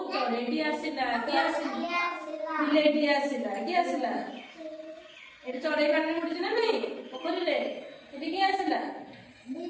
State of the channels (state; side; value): identical; both; correlation 1.00